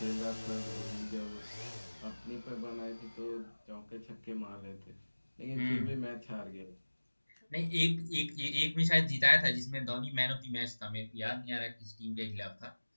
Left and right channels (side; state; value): both; inverted; correlation -1.00